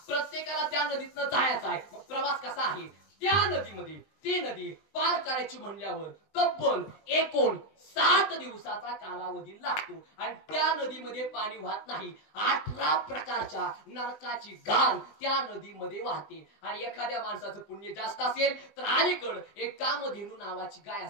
प्रत्येकाला त्या नदीतनं जायचं आहे. मग प्रवास कसा आहे? त्या नदीमध्ये ती नदी पार करायची म्हणल्यावर तब्बल 59 दिवसाचा कालावधी लागतो आणि त्या नदीमध्ये पाणी वाहत नाही. 18 प्रकारच्या नरकाची घाण त्या नदीमध्ये वाहते. आणि एखाद्या माणसाचं पुण्य जास्त असेल तर अलीकड एक कामधेनू नावाची गाय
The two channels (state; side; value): late; right; 20 ms